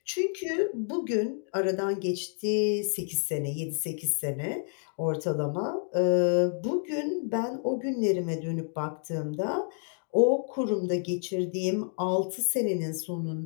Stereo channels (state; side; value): silent; right; 58 dB below the other